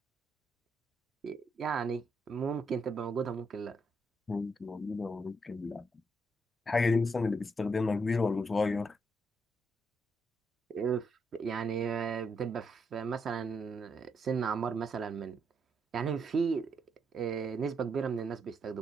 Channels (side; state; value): both; normal; correlation 0.78